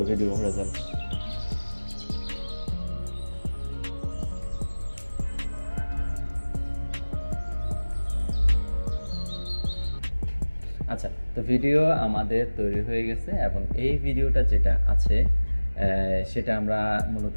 ভিডিও রেজাল্ট। আচ্ছা, তো ভিডিও আমাদের তৈরি হয়ে গেছে, এবং এই ভিডিওটা যেটা আছে সেটা আমরা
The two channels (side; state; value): both; inverted; correlation -1.00